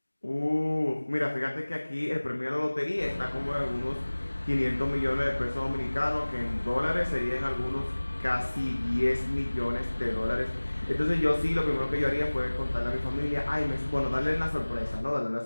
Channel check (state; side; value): inverted; both; correlation -1.00